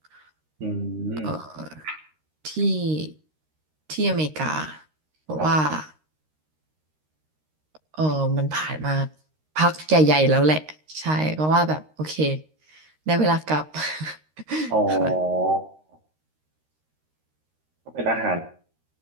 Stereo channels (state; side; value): late; left; 13 ms